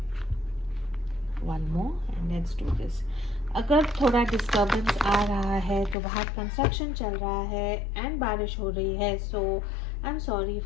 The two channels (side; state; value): right; drops out; at 6.0 s